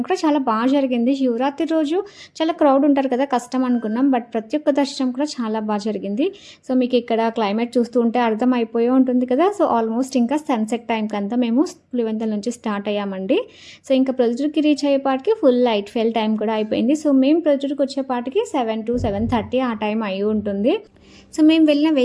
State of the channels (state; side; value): identical; both; correlation 1.00